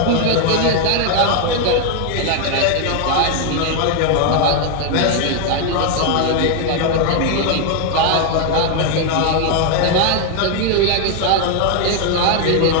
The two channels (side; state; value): both; different; correlation 0.01